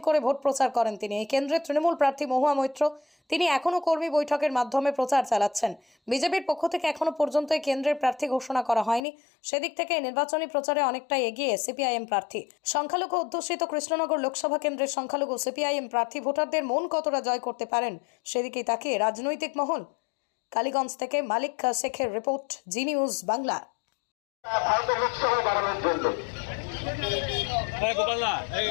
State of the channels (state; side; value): drops out; right; at 9.0 s